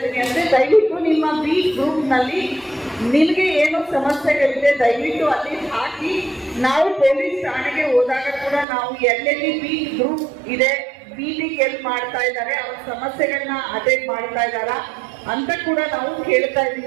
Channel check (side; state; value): left; drops out; at 8.7 s